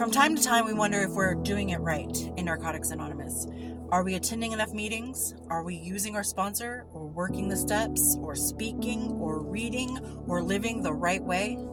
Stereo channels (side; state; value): both; identical; correlation 1.00